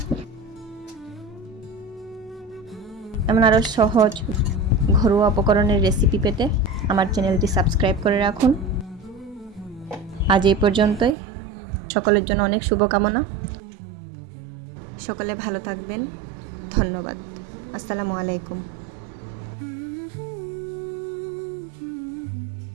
এমন আরও সহজ ঘরোয়া উপকরণের রেসিপি পেতে আমার চ্যানেলটি সাবস্ক্রাইব করে রাখুন। আজ এই পর্যন্তই। সকলের জন্য অনেক শুভকামনা। সকলে ভালো থাকবেন। ধন্যবাদ। আসসালামু আলাইকুম।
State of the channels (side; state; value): left; drops out; at 11.2 s